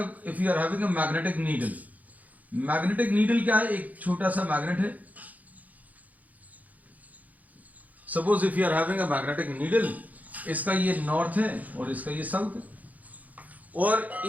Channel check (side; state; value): left; late; 0.078 ms